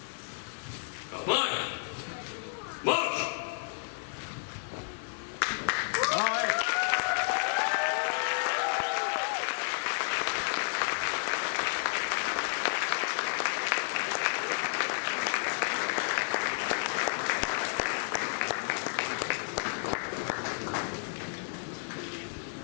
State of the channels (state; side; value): silent; right; digital silence